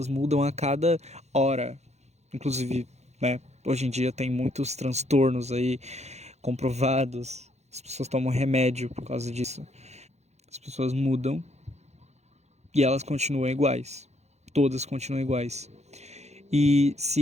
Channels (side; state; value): left; late; 0.32 ms